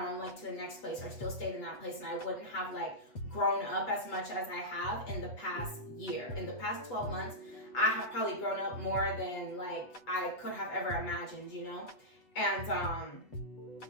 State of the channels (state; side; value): late; right; 8.1 ms